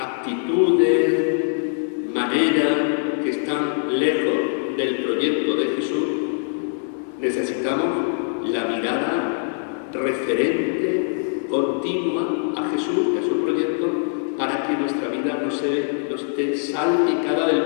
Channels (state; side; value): silent; right; digital silence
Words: maneras que están lejos del proyecto de Jesús, necesitamos la mirada referente, continua a Jesús, a su proyecto, para que nuestra vida no esté salpicada del